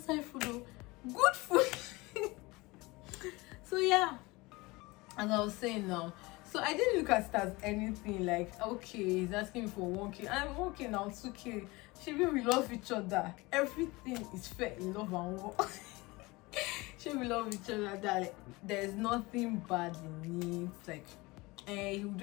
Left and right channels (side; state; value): right; quieter; 22.9 dB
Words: food though. Good food. So yeah, as I was saying now, so I didn't look at it as anything. Like okay, he's asking me for 1K. I'm 1K now, 2K. Maybe we love each other. Everything is fair in love and war. Maybe we love each other. That like, there's nothing bad in it. Like he would